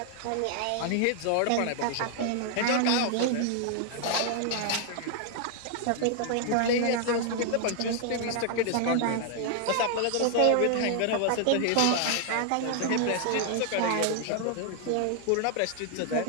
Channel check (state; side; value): different; both; correlation 0.00